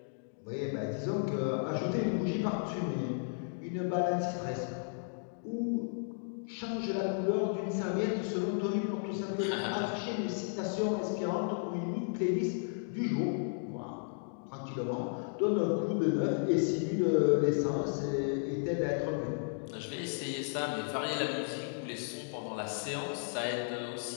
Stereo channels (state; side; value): silent; right; digital silence